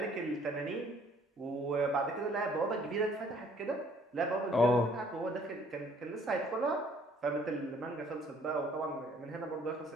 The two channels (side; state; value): both; normal; correlation 0.60